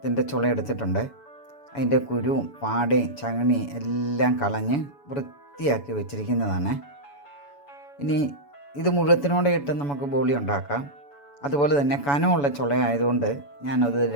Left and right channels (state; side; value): late; right; 7.0 ms